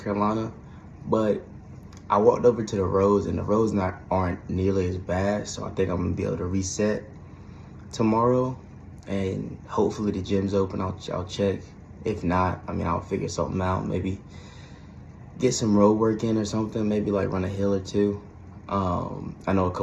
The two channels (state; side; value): identical; both; correlation 1.00